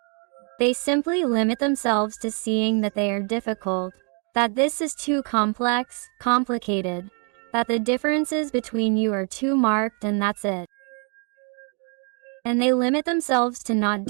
They simply limit themselves to seeing that they are difficult, that this is too complex, complicated, that the differences between you are too marked, and that's it. And they limit themselves to not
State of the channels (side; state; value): left; quieter; 38.7 dB